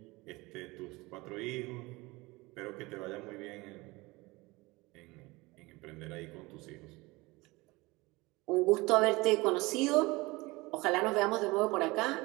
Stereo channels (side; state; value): left; quieter; 22.7 dB